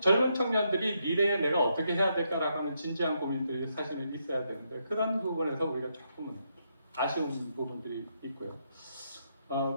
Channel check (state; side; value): inverted; both; correlation -0.78